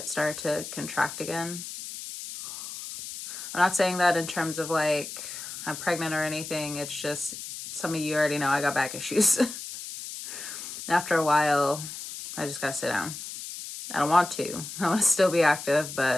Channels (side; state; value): left; noise; hiss, 9 dB below the sound